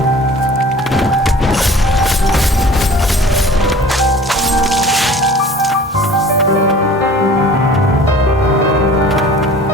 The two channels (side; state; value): both; normal; correlation 0.45